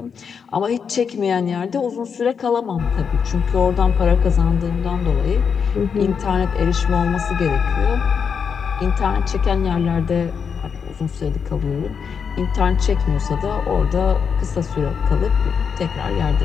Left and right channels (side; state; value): right; quieter; 6.5 dB